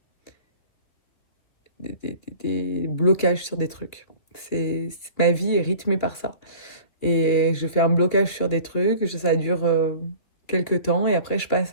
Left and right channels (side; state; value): right; late; 2.6 ms